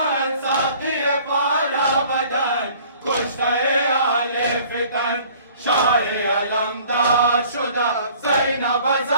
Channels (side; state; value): both; inverted; correlation -0.52